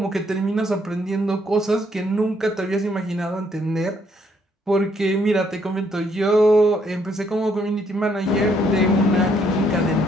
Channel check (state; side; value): normal; both; correlation 0.70